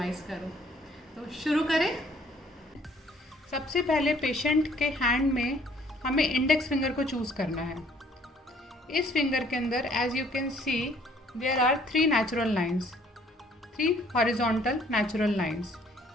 करूं। तो शुरू करें। सबसे पहले पेशेंट के हैंड में हमें इंडेक्स फिंगर को चूज़ करना है। इस फिंगर के अंदर as you can see there are 3 natural lines, 3 horizontal natural lines.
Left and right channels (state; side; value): normal; both; correlation 0.60